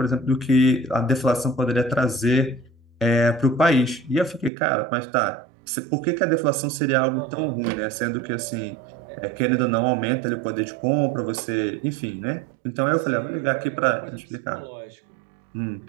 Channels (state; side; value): drops out; left; at 4.5 s